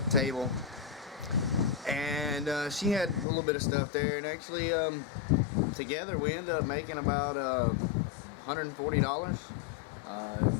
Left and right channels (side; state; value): right; drops out; at 3.2 s